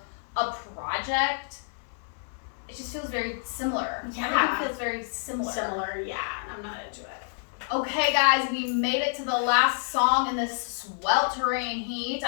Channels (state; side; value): silent; right; digital silence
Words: a project, it just feels very similar. Yeah. Everything feels very similar. Yeah, I'm not into it. Okay, guys, we made it to the last song in this sweltering heat.